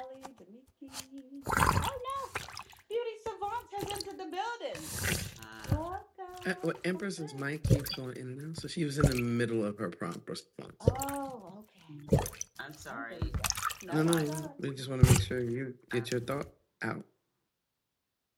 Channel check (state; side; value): identical; both; correlation 1.00